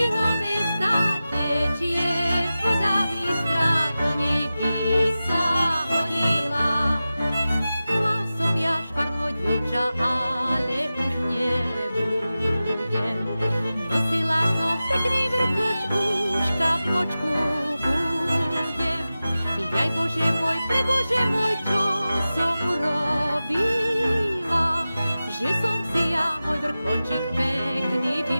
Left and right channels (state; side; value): inverted; both; correlation -0.95